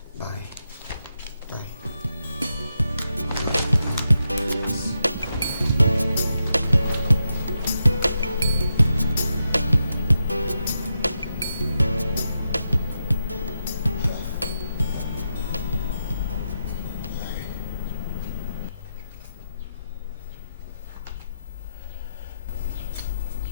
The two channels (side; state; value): both; inverted; correlation -0.86